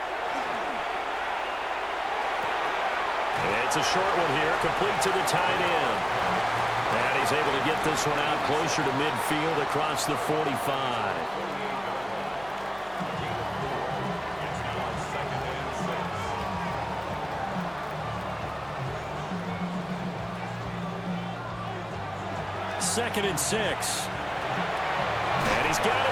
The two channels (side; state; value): left; noise; hum, 26 dB below the sound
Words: It's a short one here, complete to the tight end. And he's able to get this one out closer to midfield across the 45. Second and 6. And he's got